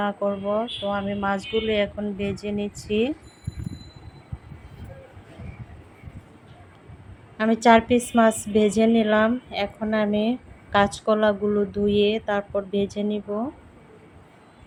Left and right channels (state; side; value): identical; both; correlation 1.00